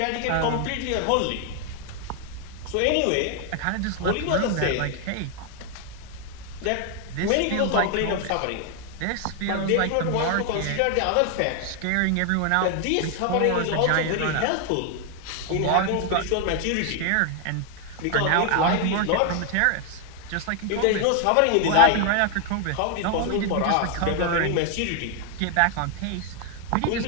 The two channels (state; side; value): different; both; correlation 0.00